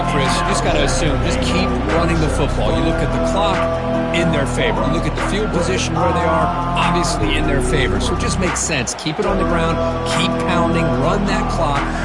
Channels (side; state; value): left; noise; hum, 28 dB below the sound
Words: Chris. You just got to assume, just keep running the football. You look at the clock, in their favor. You look at the field position where they are, obviously in their favor. So it just makes sense. Keep it on the ground, keep pounding, run that clock,